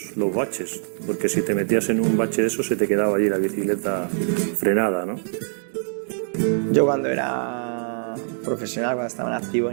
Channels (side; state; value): left; silent; digital silence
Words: baches, porque si te metías en un bache de eso se te quedaba allí la bicicleta frenada, ¿no? Yo cuando era profesional, cuando estaba en activo,